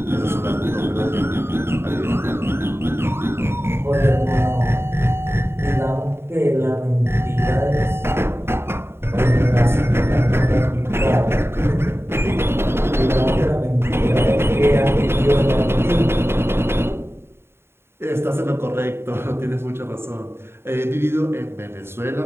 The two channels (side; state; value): left; late; 0.12 ms